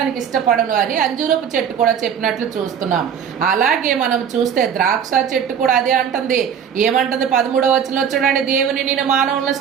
ఇష్టపడను అని అంజూరపు చెట్టు కూడా చెప్పినట్లు చూస్తున్నాం. అలాగే మనం చూస్తే ద్రాక్ష చెట్టు కూడా అదే అంటుంది. ఏమంటుంది? 13వ వచనంలో చూడండి, దేవుని నేను మానవులను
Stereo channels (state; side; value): quieter; left; 7.9 dB